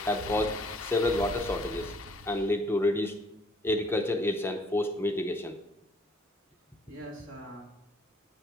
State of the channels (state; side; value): normal; both; correlation 0.61